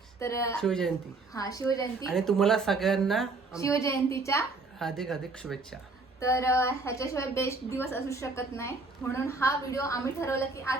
तर शिवजयंती. हा, शिवजयंती. आणि तुम्हाला सगळ्यांना शिवजयंतीच्या हार्दिक हार्दिक शुभेच्छा. तर ह्याच्याशिवाय बेस्ट दिवस असू शकत नाही, म्हणून हा व्हिडिओ आम्ही ठरवलं की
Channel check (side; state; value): left; quieter; 3.6 dB